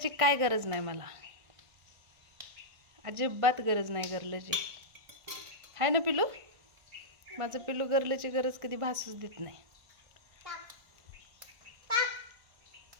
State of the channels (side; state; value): left; late; 1.5 ms